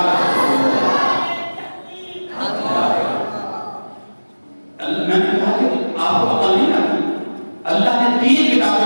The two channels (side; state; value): both; inverted; correlation -1.00